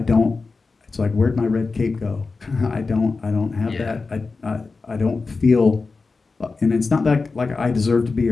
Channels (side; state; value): right; quieter; 4.1 dB